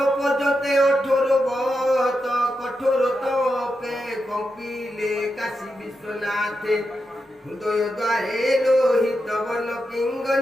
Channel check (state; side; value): normal; both; correlation 0.87